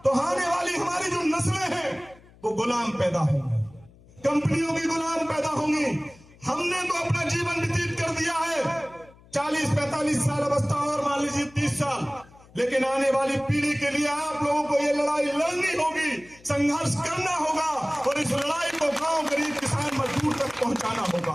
तो आने वाली हमारी जो नस्लें हैं वो गुलाम पैदा होंगी, कंपनियों की गुलाम पैदा होंगी। हमने तो अपना जीवन व्यतीत कर दिया है 40-45 साल अवस्था और मान लीजिए 30 साल, लेकिन आने वाली पीढ़ी के लिए आप लोगों को ये लड़ाई लड़नी होगी, संघर्ष करना होगा और इस लड़ाई को गांव, गरीब, किसान, मजदूर तक पहुंचाना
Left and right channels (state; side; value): noise; left; hum, 25 dB below the sound